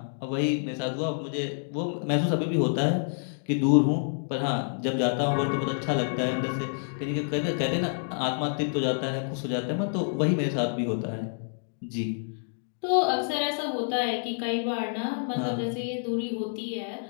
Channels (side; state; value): right; silent; digital silence